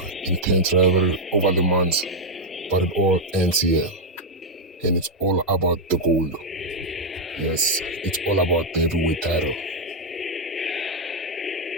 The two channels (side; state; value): both; normal; correlation 0.00